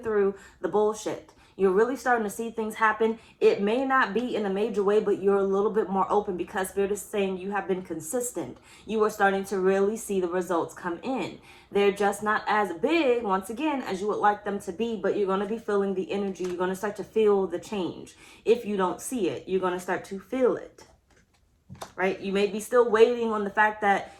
through the bullshit. You're really starting to see things happen. It may not be in a major way, but you're a little bit more open because Spirit is saying you have been consistent. You are starting to really see the results come in. They're just not as big, once again, as you would like them to be, but you're going to be feeling the energy. You're going to start to feel the change. If you don't see it, you're going to start to feel it, right? You may be still waiting on the fact that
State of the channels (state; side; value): identical; both; correlation 1.00